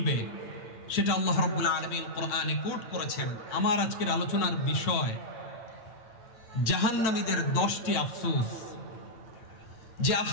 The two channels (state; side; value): late; right; 8.9 ms